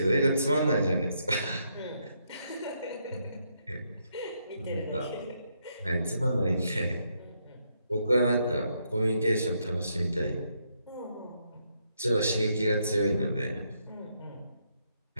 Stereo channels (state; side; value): inverted; both; correlation -0.76